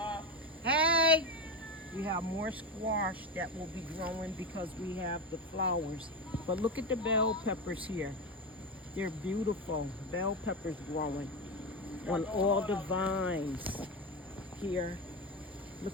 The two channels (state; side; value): normal; both; correlation 0.16